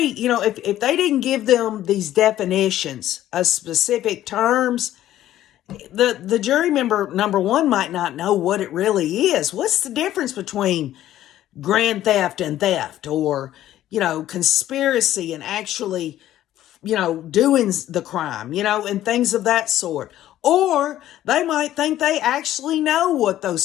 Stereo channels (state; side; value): quieter; right; 13.1 dB